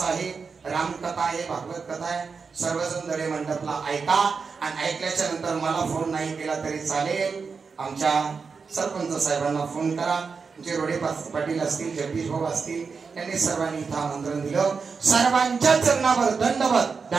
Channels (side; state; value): left; quieter; 5.2 dB